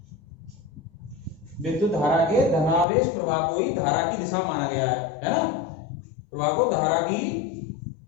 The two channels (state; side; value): drops out; right; at 2.9 s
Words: विद्युत धारा के धनावेश प्रवाह को ही धारा की दिशा माना गया है ना। प्रवाह को धारा की,